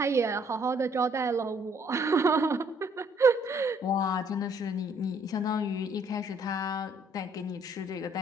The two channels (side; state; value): both; normal; correlation 0.65